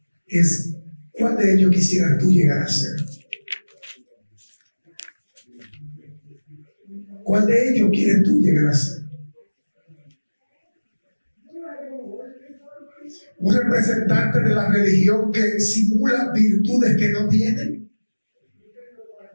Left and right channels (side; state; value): both; inverted; correlation -1.00